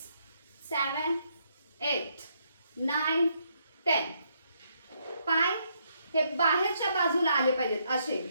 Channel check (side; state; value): both; inverted; correlation -0.74